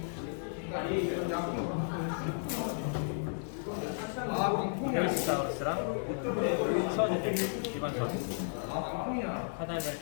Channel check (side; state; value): right; silent; digital silence